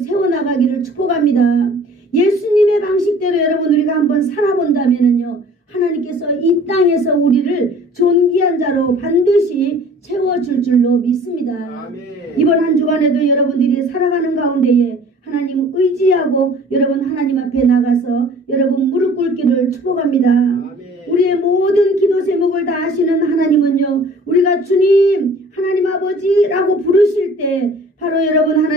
축복합니다. 예수님의 방식대로 여러분 우리가 한번 살아본다면요, 하나님께서 이 땅에서 우리를 존귀한 자로 반드시 채워줄 줄로 믿습니다. 아멘. 이번 한 주간에도 여러분들이 살아가는 가운데에 하나님 의지하고 여러분 하나님 앞에 나가서 여러분 무릎 꿇기를 축복합니다. 아멘. 우리의 모든 기도 제목을 다 아시는 하나님은요, 우리가 주님 하나님 아버지라고 부르실 때 바로 여러분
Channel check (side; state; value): both; normal; correlation 0.49